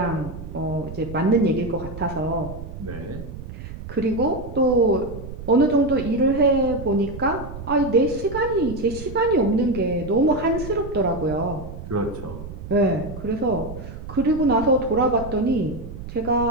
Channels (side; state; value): right; noise; rumble, 11 dB below the sound